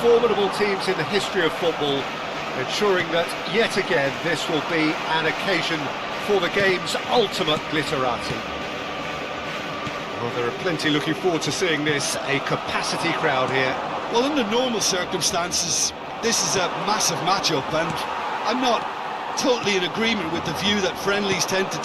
formidable teams in the history of football, ensuring that, yet again, this will be an occasion for the game's ultimate glitterati. Well, there are plenty looking forward to seeing this. A capacity crowd here. Well, under normal circumstances, this is a massive matchup, and I'm not totally in agreement with the view that friendlies tend to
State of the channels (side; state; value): both; identical; correlation 1.00